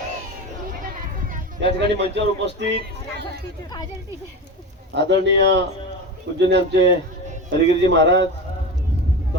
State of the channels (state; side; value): normal; both; correlation 0.25